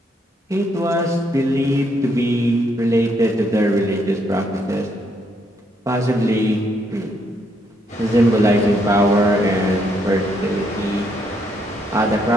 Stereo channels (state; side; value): normal; both; correlation 0.73